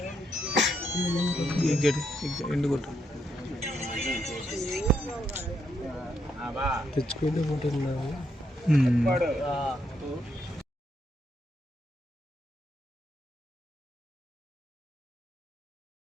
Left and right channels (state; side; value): normal; both; correlation 0.78